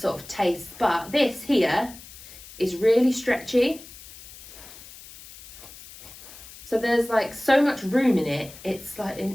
sort of taste, but this here is really stretchy. So there's like so much room in it, it's like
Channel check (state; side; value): noise; left; hiss, 17 dB below the sound